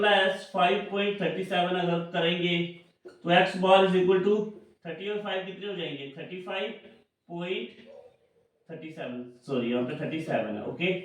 5.37 अगर करेंगे तो x bar is equal to 30 और 5 कितने हो जाएंगे 35.37, सॉरी यहाँ पे 37 है। ओके,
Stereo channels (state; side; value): identical; both; correlation 1.00